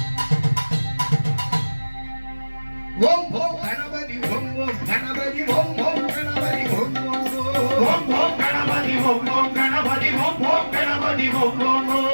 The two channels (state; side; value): inverted; both; correlation -1.00